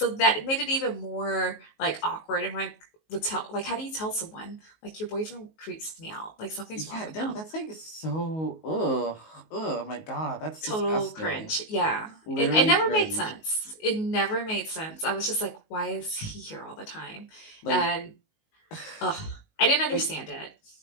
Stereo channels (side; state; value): right; late; 19 ms